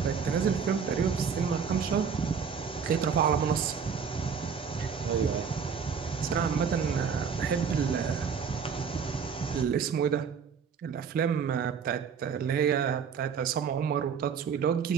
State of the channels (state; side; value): quieter; left; 6.5 dB